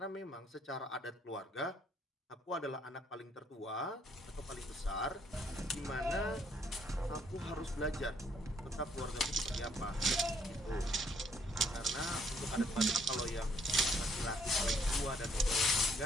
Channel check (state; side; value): normal; both; correlation 0.66